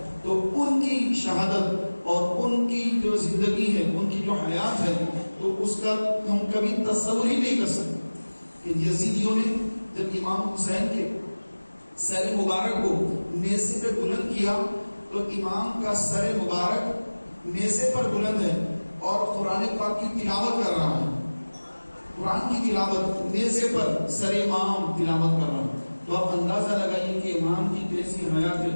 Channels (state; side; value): inverted; both; correlation -1.00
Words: تو ان کی شہادت اور ان کی جو زندگی ہے, ان کی جو حیات ہے, تو اس کا ہم کبھی تصور ہی نہیں کر سکتے کہ یزیدیوں نے جب امام حسین کے سر مبارک کو نیزے پہ بلند کیا تو امام کا سر مبارک نیزے پر بلند ہے اور قرآن پاک کی تلاوت کر رہا ہے. قرآن کی تلاوت نیزے پر سر امام تلاوت کر رہا ہے. تو آپ اندازہ لگائیے کہ امام کی کیسی حیات ہے,